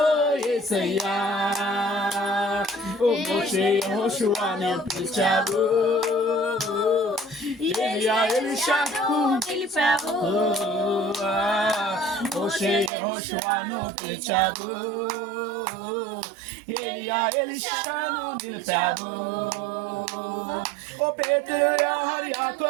యేసయ్యా. మోషే యెహోషువను పిలిచావు, ఏలియా ఎలీషాను నిలిపావు. మోషే యెహోషువను పిలిచావు, ఏలియా ఎలీషాను నిలిపావు. ఓ పేతురు యోహాను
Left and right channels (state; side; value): drops out; left; at 12.9 s